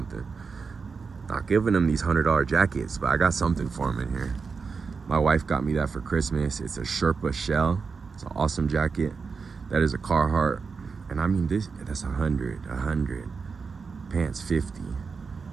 Not giving them these $100 jackets, but I got something for them in here. My wife got me that for Christmas. It's a Sherpa shell. It's an awesome jacket. That is a Carhartt. And I mean, that's 100. Pants 50.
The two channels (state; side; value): quieter; left; 5.1 dB